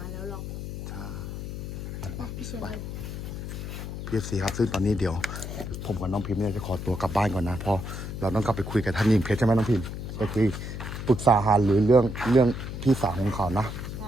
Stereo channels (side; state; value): left; noise; hum, 7 dB below the sound